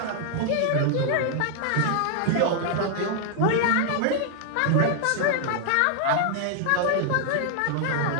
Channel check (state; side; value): different; both; correlation 0.00